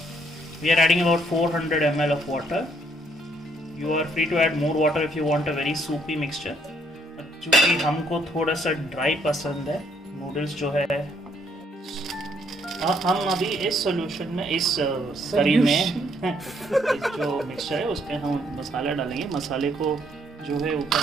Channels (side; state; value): both; normal; correlation 0.69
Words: We are adding about 400 ml of water. You are free to add more water if you want a very soupy mixture. चूँकि हमको थोड़ा सा dry पसंद है noodles जो है, हम अभी इस सॉल्यूशन में, इस करी में इस जो मिक्सचर है उसमें हम मसाला डालेंगे. मसाले को जो है ऊपर